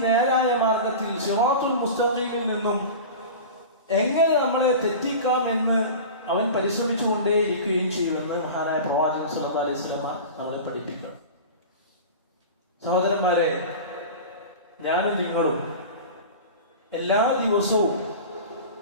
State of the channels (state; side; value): inverted; both; correlation -0.32